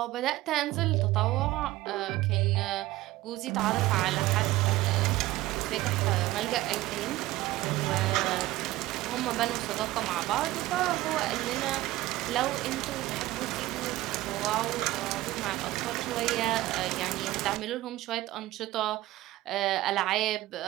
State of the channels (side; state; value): left; quieter; 17.1 dB